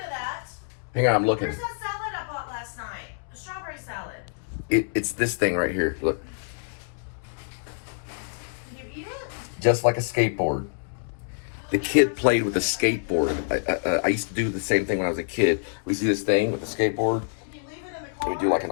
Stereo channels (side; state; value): right; silent; digital silence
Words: of that. Hang on, I'm looking. Where's that salad I bought last night? The strawberry salad. It's this thing right here. Look. Did you eat it? Just like a skateboard. The kid played with a skateboard. I used to do the same thing when I was a kid. We used to do this thing with the skateboard. Did you leave it in the We car? would do like an